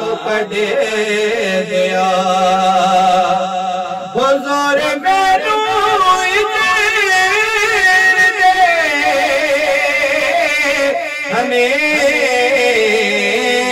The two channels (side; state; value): both; identical; correlation 1.00